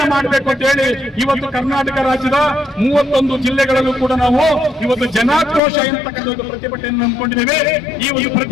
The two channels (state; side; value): drops out; right; at 5.6 s